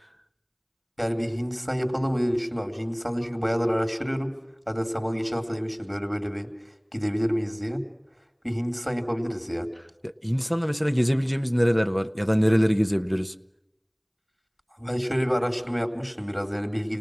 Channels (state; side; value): identical; both; correlation 1.00